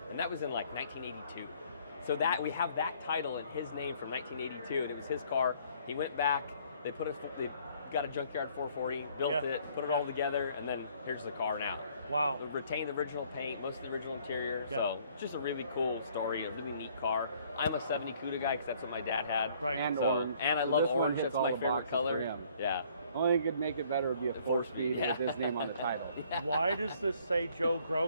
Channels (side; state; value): both; inverted; correlation -0.61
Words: And that was in like 1982. So that we have that title in his name from 1982, and it was his car. He went back, they got a junkyard 440, built Yeah. it, put it all together, and then here's the car now. Wow. It retained the original paint, most of the original interior. Yeah. So just a really cool story, a really neat car. I'm a 70 CUDA guy because that's what my dad had. Right. And So, orange. and I So love this one orange. hits That's all my the favorite boxes for color. him. Yeah. Only thing could make it better would be a 4-speed yeah. with his name on the title. Why does this say Joe